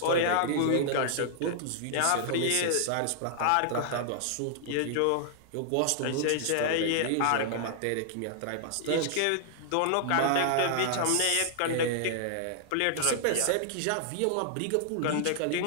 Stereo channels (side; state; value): both; different; correlation -0.01